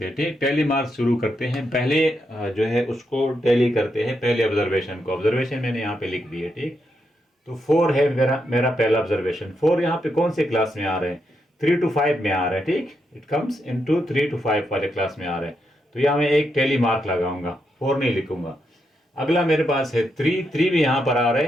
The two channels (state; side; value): normal; both; correlation 0.82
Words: हैं। ठीक, टैली मार्क्स शुरू करते हैं। पहले जो है उसको टैली करते हैं, पहले ऑब्जर्वेशन को। ऑब्जर्वेशन मैंने यहाँ पे लिख दी है। ठीक, तो 4 है मेरा मेरा पहला ऑब्जर्वेशन। 4 यहाँ पे कौन से क्लास में आ रहे हैं? 3 to 5 में आ रहा है। ठीक, इट कम्स इनटू 3 to 5 वाले क्लास में आ रहा है, तो यहाँ मैं एक टैली मार्क लगाऊंगा, 4 नहीं लिखूंगा। अगला मेरे पास है 3 भी यहाँ पर आ रहे